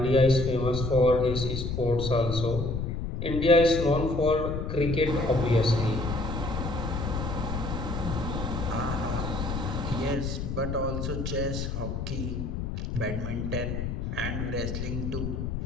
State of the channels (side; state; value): left; noise; rumble, 3 dB below the sound